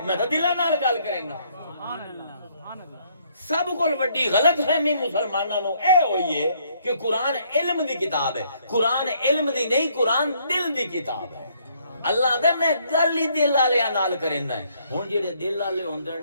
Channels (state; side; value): inverted; both; correlation -0.67